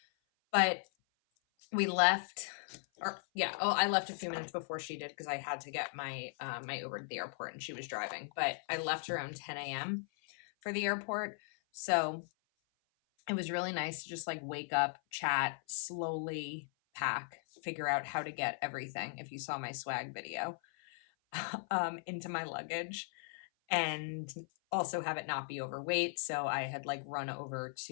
but we left, I left a few minutes before she did because I had to get my Uber to the airport and she was driving. But I left around 10 a.m. for the airport. So it was really nice to just like wake up, chat, slowly pack, figure out how to get everything, if you saw my swag video, into my luggage, and also have it not be overweight. So I had like run over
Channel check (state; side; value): silent; right; 53 dB below the other